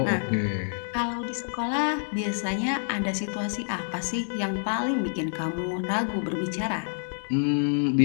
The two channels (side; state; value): right; silent; digital silence